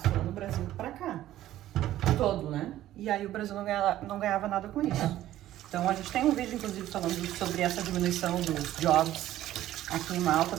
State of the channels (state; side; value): quieter; left; 13.6 dB